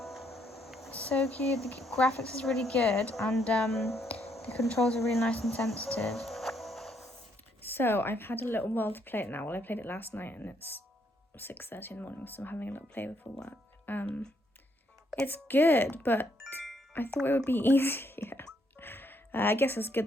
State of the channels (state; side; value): normal; both; correlation 0.73